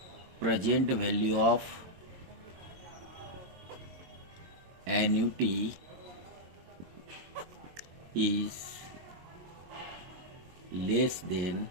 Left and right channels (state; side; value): late; left; 22 ms